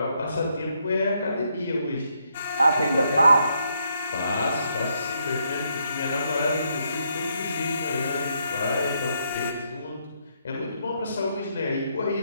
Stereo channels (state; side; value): inverted; both; correlation -0.75